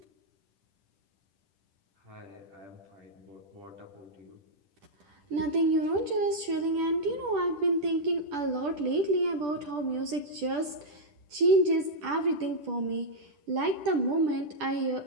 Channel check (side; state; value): left; late; 10 ms